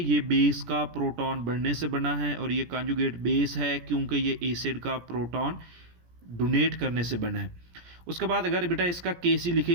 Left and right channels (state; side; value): late; left; 17 ms